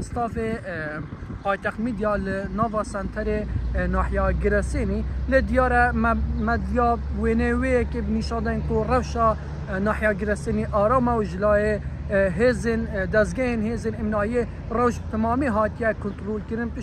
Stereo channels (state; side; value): identical; both; correlation 1.00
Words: پایتخت میدیا لناوا سنتر ناحیه گرسینی لدیاره مدیا وینوی که بنیشادن کو روشا ناحیه گرسینی آرام و جلای هزن دزگین هزن امنایی روش تمامی هاتیه کنترل کردن